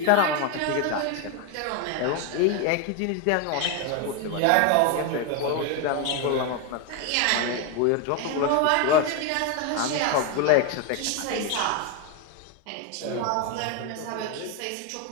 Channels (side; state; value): both; different; correlation 0.02